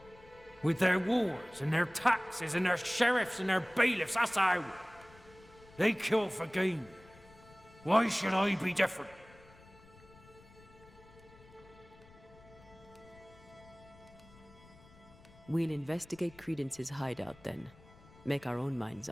With their wars and their taxes and their sheriffs and their bailiffs, that's how. They kill for gain. Why should I be different? We'll investigate Credence's hideout then. Make our own minds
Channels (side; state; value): left; noise; rumble, 24 dB below the sound